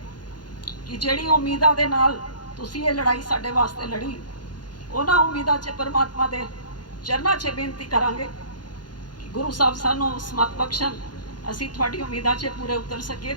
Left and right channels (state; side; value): late; right; 0.70 ms